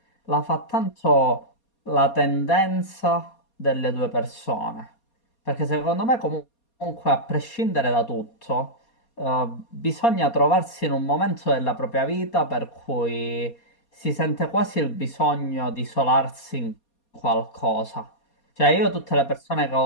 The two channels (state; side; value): late; right; 4.2 ms